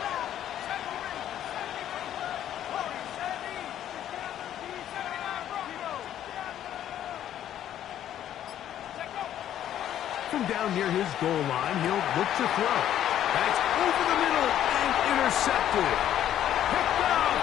From down near his goal line, he'll look to throw. That's over the middle and intercepted. Picked off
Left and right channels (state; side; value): quieter; right; 11.1 dB